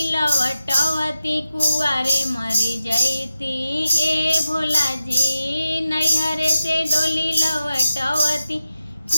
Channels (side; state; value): both; inverted; correlation -0.92